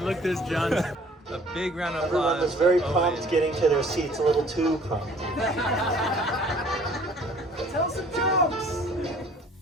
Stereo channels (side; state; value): both; normal; correlation 0.54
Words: this, John. A big round of applause. Everyone was very for prompt Owen. getting to their seats, a little too prompt. Tell some jokes.